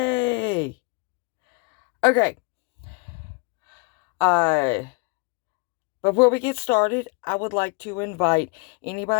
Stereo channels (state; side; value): quieter; right; 31.4 dB